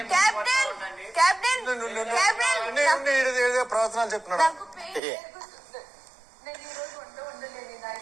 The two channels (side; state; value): left; drops out; at 5.0 s